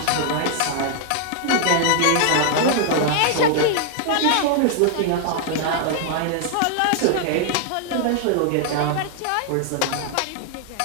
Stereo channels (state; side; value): different; both; correlation 0.00